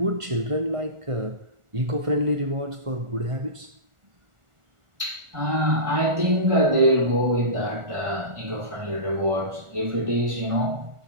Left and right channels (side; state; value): left; late; 1.4 ms